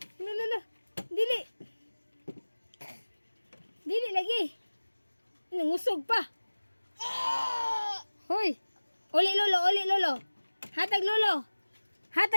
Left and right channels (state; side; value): inverted; both; correlation -1.00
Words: Hala, hala. Dili. Dili lagi. Nangusog pa. Hoy. Uli lolo, uli lolo. Hatag lolo.